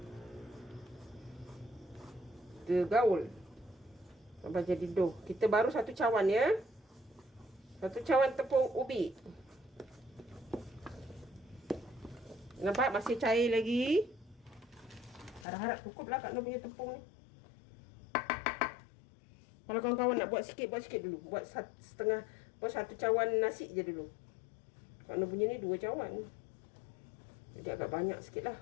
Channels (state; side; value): drops out; right; at 15.5 s